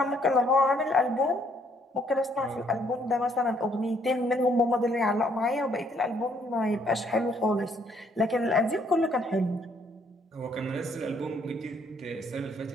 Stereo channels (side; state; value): both; normal; correlation 0.67